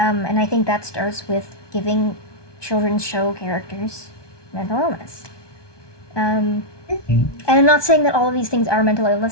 I think that starts with giving children's show characters mental illness. And I'm not saying that all of these things are mental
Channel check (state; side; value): late; right; 1.2 ms